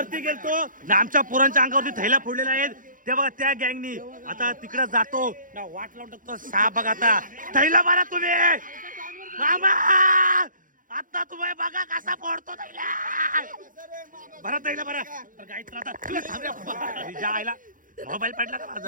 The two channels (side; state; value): left; late; 0.39 ms